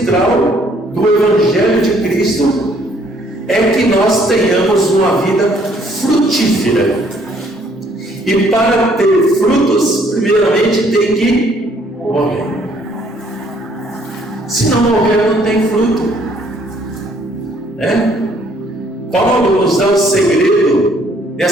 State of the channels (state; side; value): normal; both; correlation 0.64